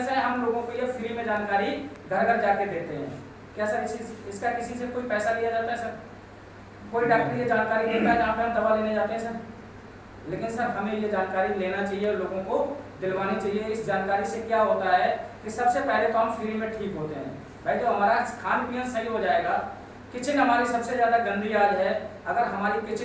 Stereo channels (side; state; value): both; identical; correlation 1.00